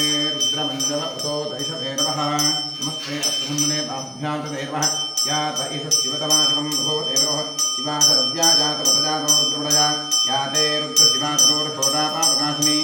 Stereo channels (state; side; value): identical; both; correlation 1.00